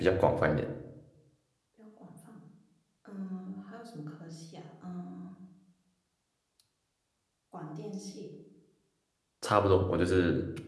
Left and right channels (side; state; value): both; identical; correlation 1.00